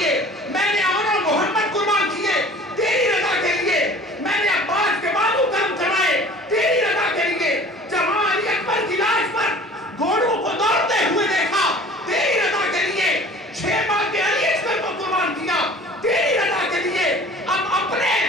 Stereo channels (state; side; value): normal; both; correlation 0.46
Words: میں نے امن و محمد قربان کیے تیری رضا کے لیے، میں نے عباس کے بازو کرم چڑھائے تیری رضا کے لیے، جب علی اکبر کی لاش پر گھوڑوں کو دوڑتے ہوئے دیکھا تیری رضا کے لیے، 6 ماہ کے علی اکبر کو قربان کیا تیری رضا کے لیے، اب